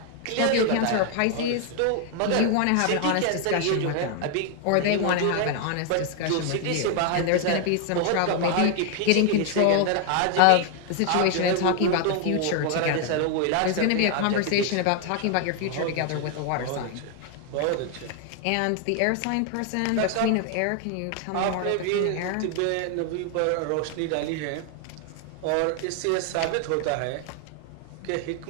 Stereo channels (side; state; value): both; different; correlation 0.00